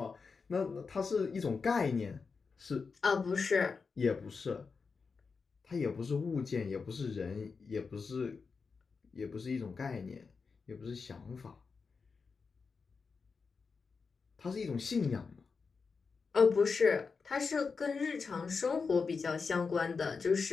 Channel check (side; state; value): right; quieter; 5.0 dB